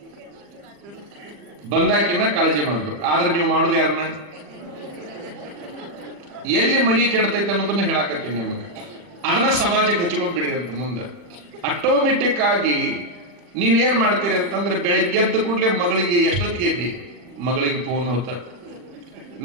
ಬಂದಾಕಿನ ಕಾಳಜಿ ಮಾಡ್ಬೇಕು. ಆದ್ರೆ ನೀವು ಮಾಡೋದು ಯಾರನ್ನ? ಎಲ್ಲಿ ಮನಿ ಕೆಡ್ತೈತೆ ಅನ್ನೋದನ್ನ ಹೇಳಾಕತ್ತೀನಿ ನಿಮಗೆ. ಅದನ್ನ ಸಮಾಜಕ್ಕೆ ಹಚ್ಕೊಂಡ್ಬಿಡಿರಿ ಅಂತ ಮುಂದೆ. ಆಟೋಮೆಟಿಕ್ ಆಗಿ ನೀವೇನ್ ಮಾಡ್ತೀರಿ ಅಂತಂದ್ರೆ, ಬೆಳಿಗ್ಗೆ ಎದ್ದ ಕೂಡಲೇ ಮಗಳಿಗೆ ಎಷ್ಟೊತ್ತಿಗೆ ಎದ್ದಿ? ಮಗಳಿಗೆ ಫೋನ್ ಹೋತ,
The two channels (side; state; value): left; late; 40 ms